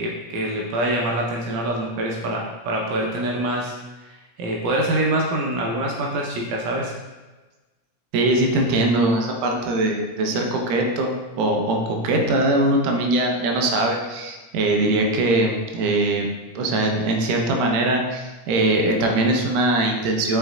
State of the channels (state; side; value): late; left; 17 ms